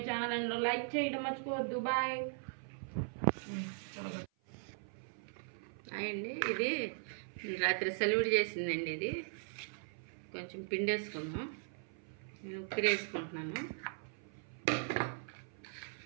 channel and like చేయడం మర్చిపోవద్దు. బాయ్ అండి. ఇది రాత్రి సెలవుడు చేసిందండి. ఇది కొంచెం పిండి వేసుకుందాం. నేను ఉక్కిరి వేసుకుంటున్నాను.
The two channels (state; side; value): silent; left; 52 dB below the other